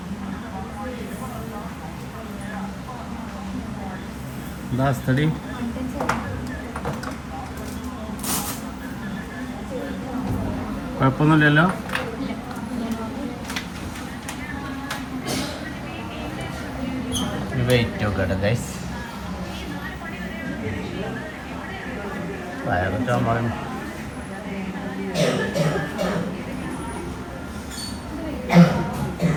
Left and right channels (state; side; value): identical; both; correlation 1.00